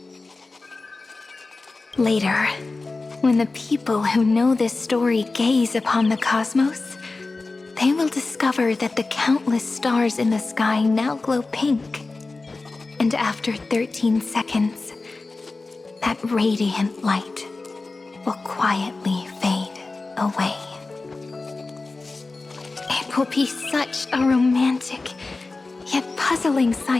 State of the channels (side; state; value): right; quieter; 3.6 dB